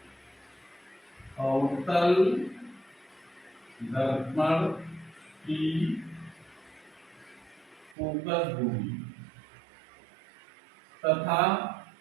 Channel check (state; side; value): drops out; left; at 8.0 s